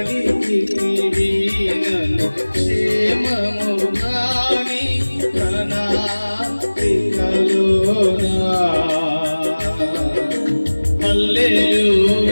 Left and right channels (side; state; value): both; inverted; correlation -1.00